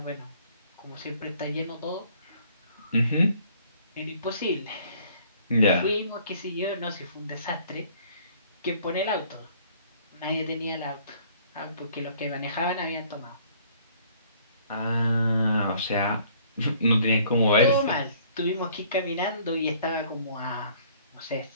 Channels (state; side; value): inverted; both; correlation -0.57